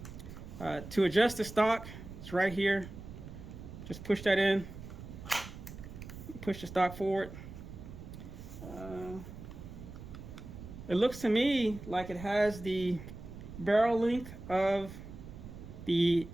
To adjust the stock, it's right here. Just push that in, push the stock forward. It looks to me like it has the barrel length of the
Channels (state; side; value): noise; right; rumble, 13 dB below the sound